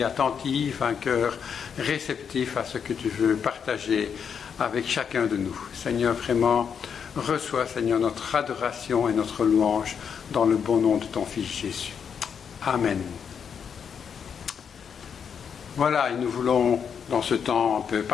attentives, un cœur réceptif à ce que tu veux partager avec chacun de nous. Seigneur, vraiment, reçois, Seigneur, notre adoration et notre louange dans le bon nom de ton Fils Jésus. Amen. Voilà, et nous voulons, dans ce temps un peu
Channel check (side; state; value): right; quieter; 7.1 dB